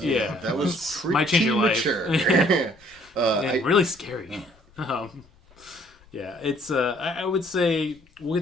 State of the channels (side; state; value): left; noise; rumble, 29 dB below the sound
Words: That was pretty Might change your life. mature. Yeah, really scary. Yeah, it's I would say we'll